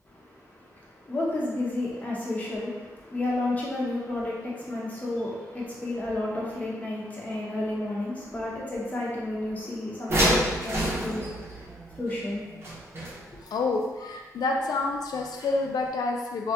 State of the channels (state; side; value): normal; both; correlation 0.71